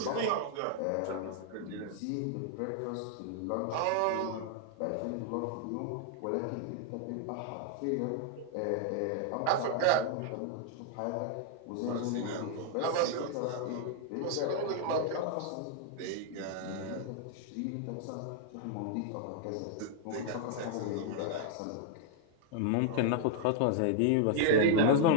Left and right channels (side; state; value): both; different; correlation 0.00